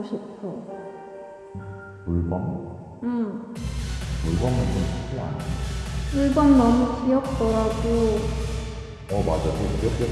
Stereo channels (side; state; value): both; identical; correlation 1.00